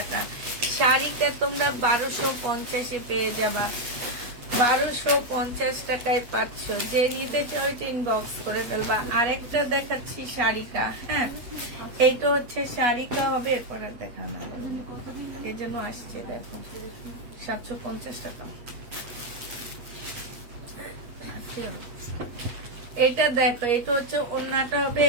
শাড়িটা তোমরা 1250-এ পেয়ে যাবা, 1250 টাকায় পাচ্ছ। যে নিতে চাও ইনবক্স করে ফেলবা। আরেকটা দেখাচ্ছি শাড়িটা। হ্যাঁ, এইটা হচ্ছে শাড়িটা হবে, এরপরে দেখানো হবে, এই জন্য আসছে। দেখো 750 টাকা। এটা দেখো, এটা হচ্ছে ওড়নাটা হবে,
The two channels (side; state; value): left; late; 8.3 ms